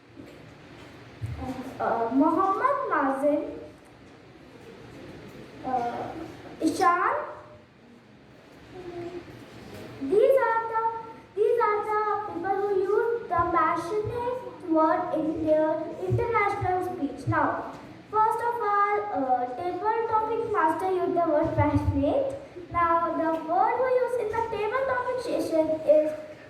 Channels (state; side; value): identical; both; correlation 1.00